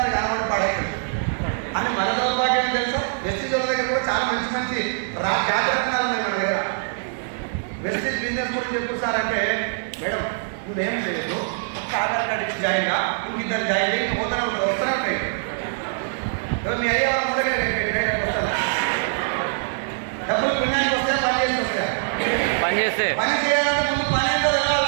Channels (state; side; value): silent; left; digital silence